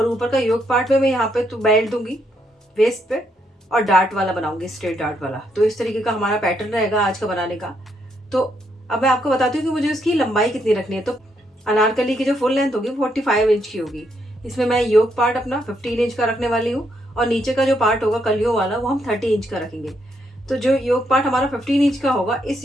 ऊपर का योक पार्ट में मैं यहाँ पे तो बेल्ट दूंगी वेस्ट पे, और डार्ट वाला बनाऊंगी, स्ट्रेट डार्ट वाला। तो इस तरीके का हमारा पैटर्न रहेगा आज का बनाने का। तो अब मैं आपको बताती हूँ कि मुझे उसकी लंबाई कितनी रखनी है। तो अनारकली की जो फुल लेंथ होगी 45 इंच की होगी। इसमें मैं योक पार्ट अपना 15 इंच का रखने वाली हूँ, और नीचे का जो पार्ट होगा कलियों वाला वो हम 30 इंच का रखेंगे। तो जो योक पार्ट हमारा 15 इंच का होगा, इस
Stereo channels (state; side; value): normal; both; correlation 0.76